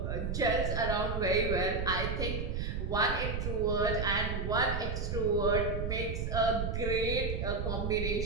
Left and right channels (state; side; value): noise; right; rumble, 2 dB below the sound